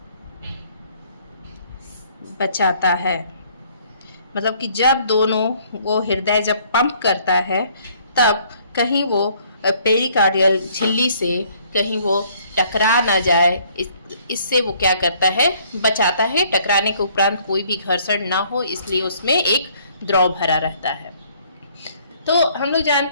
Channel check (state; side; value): inverted; both; correlation -0.61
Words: बचाता है। मतलब कि जब दोनों वो हृदय जब पंप करता है तब कहीं वो पेरिकार्डियल झिल्ली से कहीं वो टकरा ना जाए, इससे वो क्या करता है, बचाता है। टकराने के उपरांत कोई भी घर्षण ना हो, इसलिए उसमें एक द्रव भरा रहता है। तो हम लोग